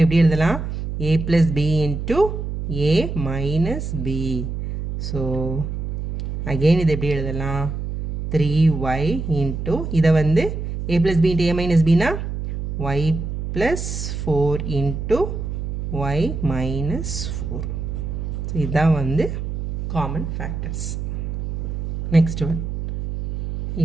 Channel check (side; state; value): right; noise; hum, 4 dB below the sound